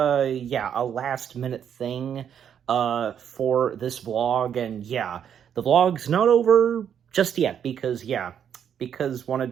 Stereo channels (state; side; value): quieter; left; 8.6 dB